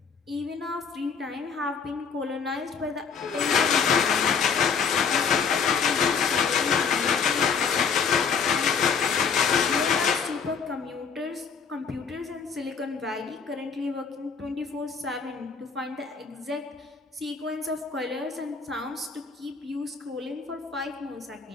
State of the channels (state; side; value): quieter; right; 6.0 dB